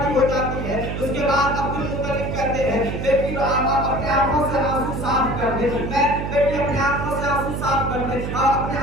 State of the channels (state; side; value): noise; right; hum, 4 dB below the sound